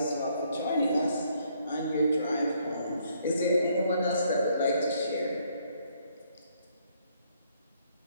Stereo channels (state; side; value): inverted; both; correlation -0.69